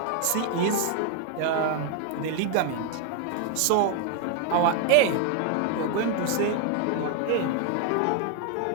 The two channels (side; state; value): both; different; correlation 0.00